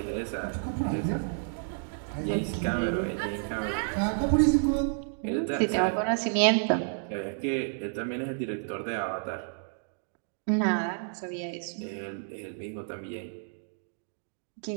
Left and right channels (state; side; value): silent; left; digital silence